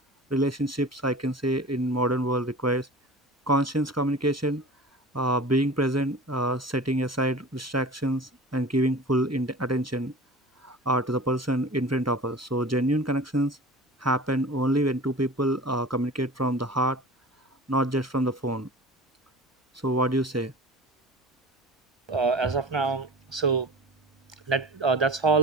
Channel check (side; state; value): both; normal; correlation 0.37